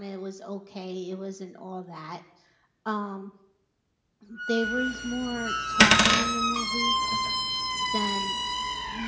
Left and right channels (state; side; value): identical; both; correlation 1.00